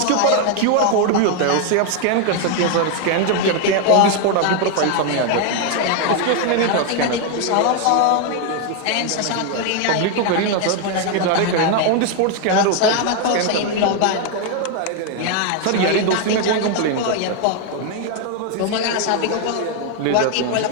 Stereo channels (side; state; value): both; different; correlation 0.01